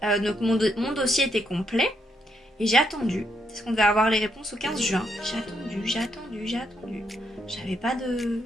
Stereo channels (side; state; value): both; normal; correlation 0.77